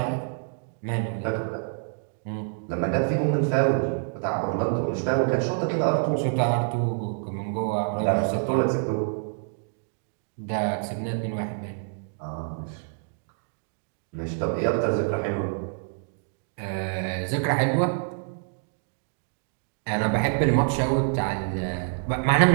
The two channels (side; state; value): left; silent; digital silence